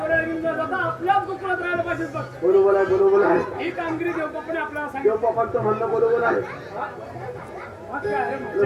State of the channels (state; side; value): identical; both; correlation 1.00